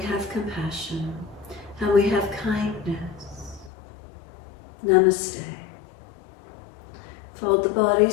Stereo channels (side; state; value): right; drops out; at 3.7 s